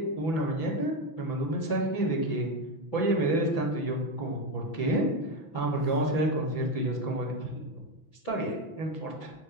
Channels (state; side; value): late; right; 6.0 ms